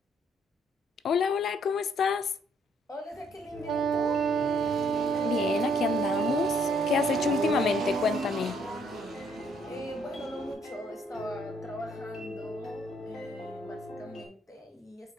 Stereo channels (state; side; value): normal; both; correlation 0.67